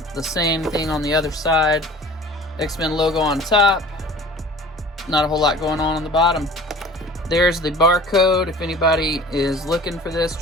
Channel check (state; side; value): normal; both; correlation 0.44